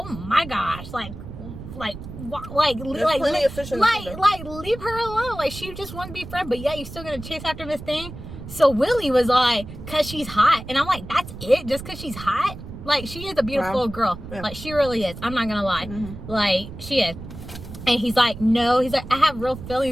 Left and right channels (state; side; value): noise; right; rumble, 12 dB below the sound